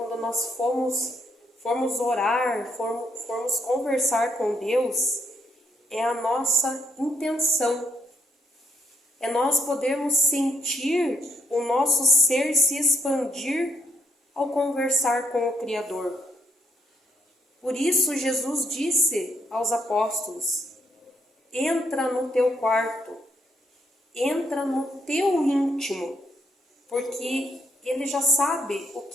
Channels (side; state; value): both; normal; correlation 0.74